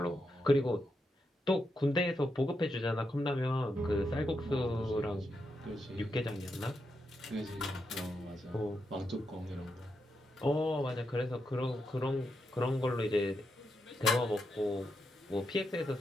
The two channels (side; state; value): both; normal; correlation 0.84